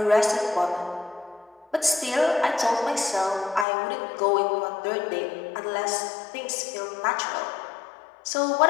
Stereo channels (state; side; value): drops out; right; at 3.7 s